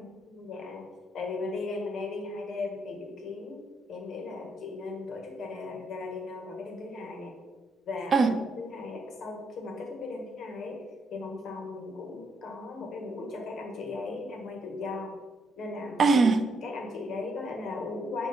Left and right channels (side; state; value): both; normal; correlation 0.75